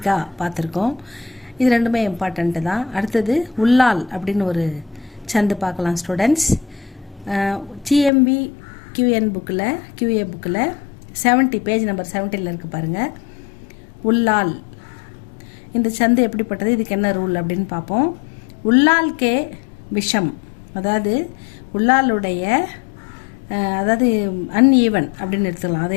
பார்த்துருக்கோம். இது ரெண்டுமே இம்பார்ட்டண்ட்டு தான். அடுத்தது உள்ளால் அப்படின்னு ஒரு சந்து பார்க்கலாம் ஸ்டூடெண்ட்ஸ். ஜிஎம்பி QA புக்கில் 70 பேஜ் நம்பர் 70 இருக்குது பாருங்கள். உள்ளால் இந்த சந்து எப்படிப்பட்டது, இதுக்கு என்ன ரூல் அப்படின்னு பார்ப்போம். உள்ளால்கே விஷம், அதாவது உள்ளாலுடைய அதாவது அன்ஈவன் அப்படின்னு எடுத்துக்கலாம். அது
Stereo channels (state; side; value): drops out; right; at 8.1 s